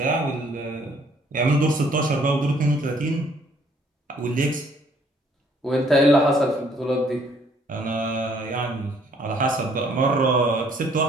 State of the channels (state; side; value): normal; both; correlation 0.63